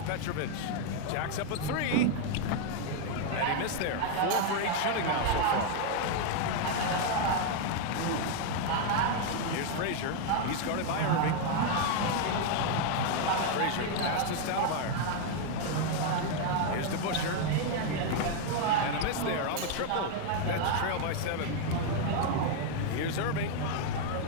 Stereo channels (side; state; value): both; different; correlation 0.00